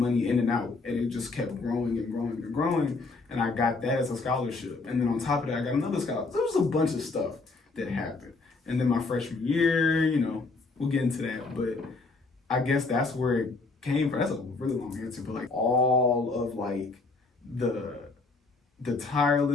in and out. And it just kept growing and growing and growing. And I got that as a scholarship. And then on top of that, I got another scholarship. There was a bunch of stuff that happened. And then my freshman year, we'll get into that. But I guess that's where it came from. That's a really long answer. But like all of like the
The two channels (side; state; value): right; quieter; 3.8 dB